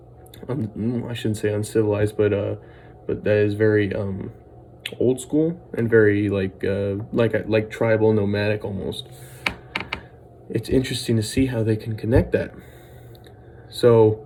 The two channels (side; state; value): both; identical; correlation 1.00